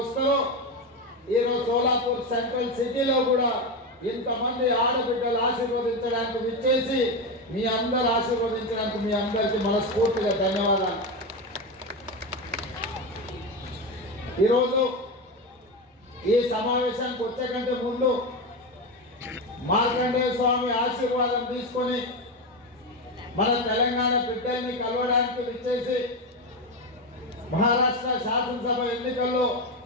ఈరోజు సోలాపూర్ సెంట్రల్ సిటీలో కూడా ఇంతమంది ఆడబిడ్డలు ఆశీర్వదించడానికి విచ్చేసి మీ అందరు ఆశీర్వదించడానికి మీ అందరికీ మనస్ఫూర్తిగా ధన్యవాదాలు. ఈరోజు ఈ సమావేశానికి వచ్చే కంటే ముందు మార్కండేయ స్వామి ఆశీర్వాదం తీసుకొని మన తెలంగాణ బిడ్డల్ని కలవడానికి విచ్చేసి మహారాష్ట్ర శాసనసభ ఎన్నికల్లో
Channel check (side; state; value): both; normal; correlation 0.15